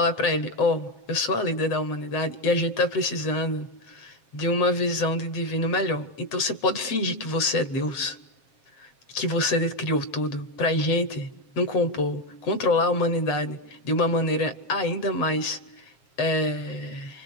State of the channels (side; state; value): right; late; 7.5 ms